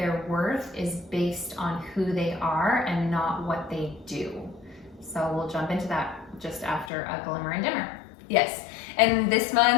worth is based on who they are and not what they do. So we'll jump into that just after a glimmer and dimmer. Yes, and this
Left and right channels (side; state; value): right; drops out; at 6.9 s